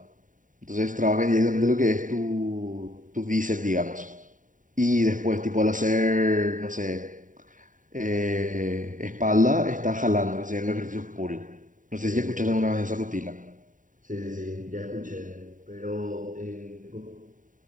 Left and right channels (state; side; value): late; left; 0.38 ms